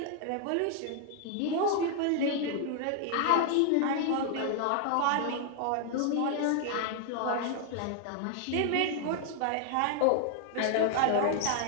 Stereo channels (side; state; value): both; different; correlation 0.00